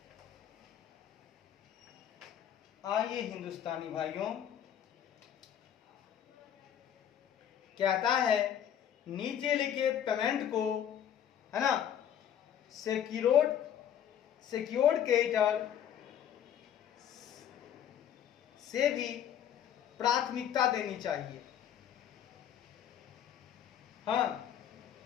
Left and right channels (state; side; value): quieter; right; 9.6 dB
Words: आइए हिंदुस्तानी भाइयों, कहता है नीचे लिखे पेमेंट को, है ना, सिक्योर्ड क्रेडिटर से भी प्राथमिकता देनी चाहिए। हाँ,